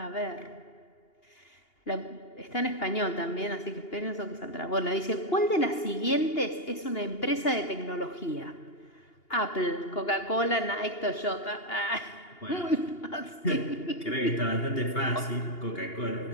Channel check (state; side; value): late; right; 2.8 ms